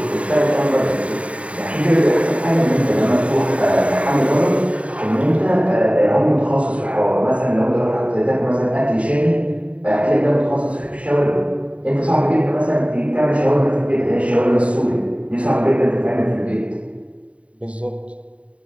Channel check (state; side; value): late; left; 0.064 ms